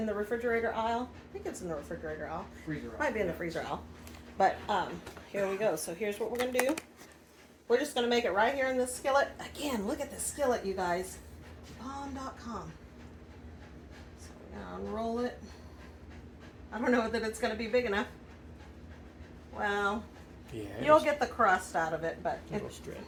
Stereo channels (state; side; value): identical; both; correlation 1.00